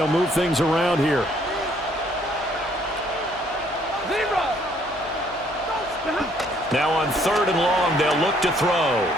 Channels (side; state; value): left; noise; hum, 21 dB below the sound